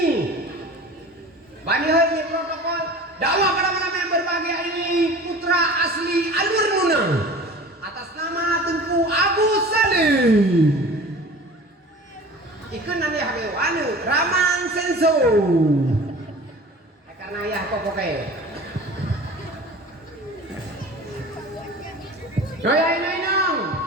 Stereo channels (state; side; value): normal; both; correlation 0.40